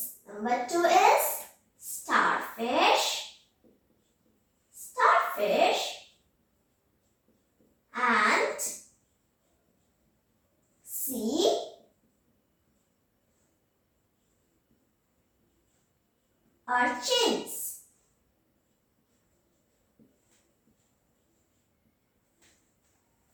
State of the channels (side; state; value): both; identical; correlation 1.00